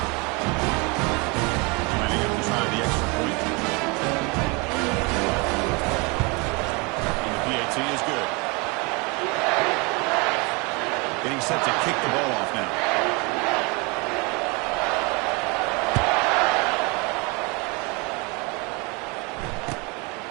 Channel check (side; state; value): left; quieter; 28.3 dB